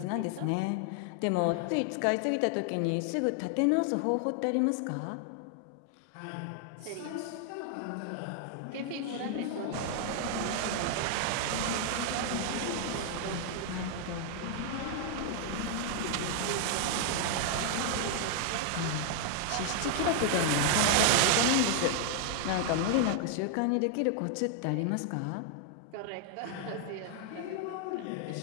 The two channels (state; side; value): different; both; correlation 0.00